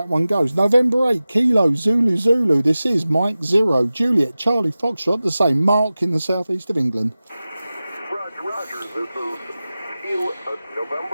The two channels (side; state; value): both; inverted; correlation -0.96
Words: one goes. November 8 Kilo Zulu. This is Mike 0 Juliet Charlie Foxtrot, the same Mark in the southeast of England. Roger, this is